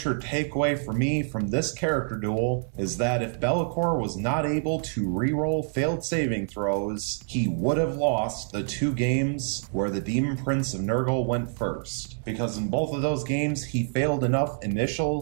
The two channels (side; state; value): left; silent; digital silence